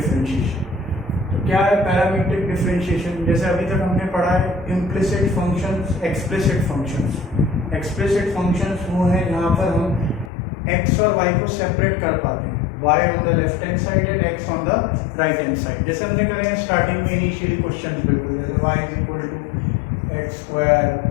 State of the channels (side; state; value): right; drops out; at 10.3 s